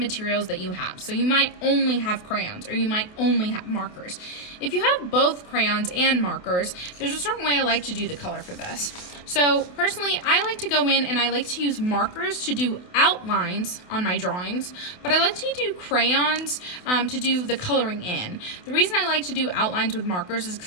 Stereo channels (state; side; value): late; right; 28 ms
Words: that you have. So you might only have crayons, or you might only have markers. If you have both crayons and markers, there's a certain way I like to do the color for this. So personally, I like to go in and I like to use markers to do outlines on my drawings, but I like to do crayons to do the coloring in. The reason I like to do outlines with markers is